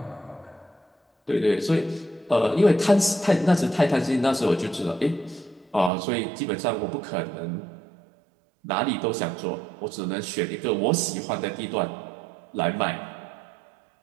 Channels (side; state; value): left; drops out; at 5.9 s